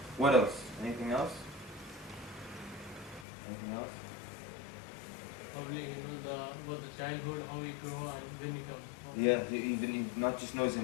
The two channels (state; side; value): drops out; right; at 3.2 s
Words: What else? Anything else? Anything else? Probably about the childhood, how he grew and when he comes. Yeah, he not just knows